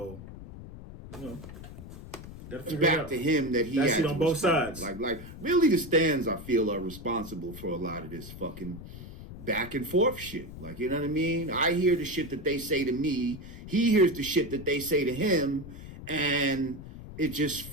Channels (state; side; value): noise; left; rumble, 13 dB below the sound